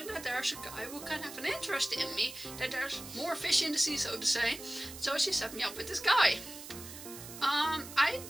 that there's a guy who can have an interest in me, that there's more fish in the sea, so to say. So she set me up with this guy. I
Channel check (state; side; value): noise; right; hiss, 13 dB below the sound